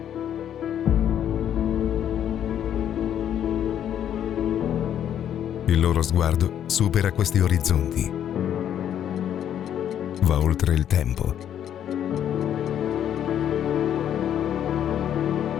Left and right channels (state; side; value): quieter; right; 10.0 dB